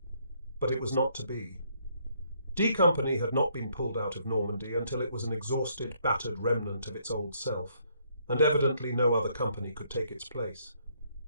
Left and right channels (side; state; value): both; inverted; correlation -0.69